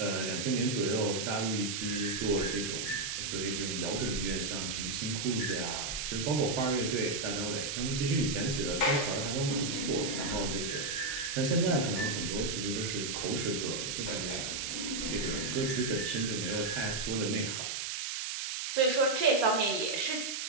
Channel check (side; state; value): right; noise; hiss, 3 dB below the sound